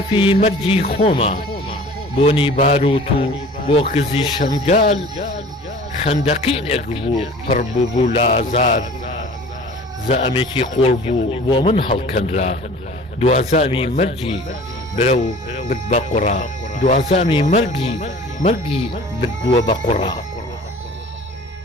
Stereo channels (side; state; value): both; normal; correlation 0.45